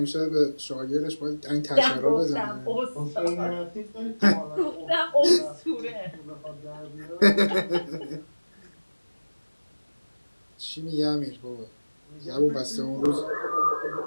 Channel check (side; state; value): both; inverted; correlation -1.00